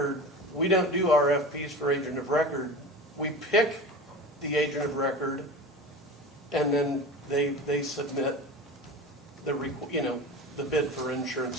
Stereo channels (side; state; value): both; normal; correlation 0.32